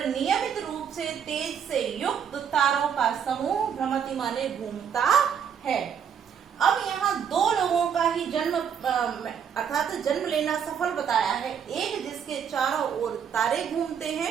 रूप से तेज से युक्त तारों का समूह भ्रमति माने घूमता है। अब यहाँ दो लोगों का ही जन्म अर्थात जन्म लेना सफल बताया है, एक जिसके चारों ओर तारे घूमते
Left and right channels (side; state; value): left; quieter; 7.7 dB